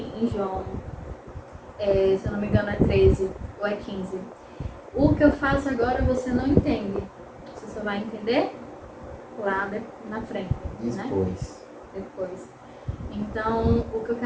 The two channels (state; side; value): identical; both; correlation 1.00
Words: João, se eu não me engano é 13 ou é 15. O que eu faço agora você não entende. Você só vai entender lá na frente. Depois. Então, o que eu